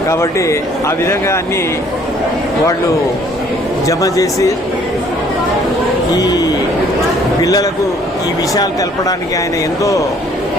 కాబట్టి ఆ విధంగా అన్నీ వాళ్ళు జమ చేసి ఈ పిల్లలకు ఈ విషయాలు తెలపడానికి ఆయన ఎంతో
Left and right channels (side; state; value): both; normal; correlation 0.59